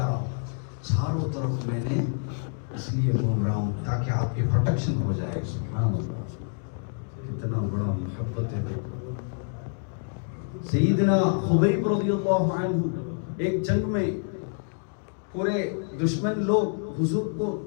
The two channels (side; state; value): right; silent; 59 dB below the other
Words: رہا ہوں. چاروں طرف میں نے اس لیے گھوم رہا ہوں تاکہ آپ کی پروٹیکشن ہو جائے. سبحان اللہ, کتنا بڑا محبت ہے. سیدنا خبیب رضی اللہ عنہ ایک جنگ میں پورے دشمن لوگ حضور کو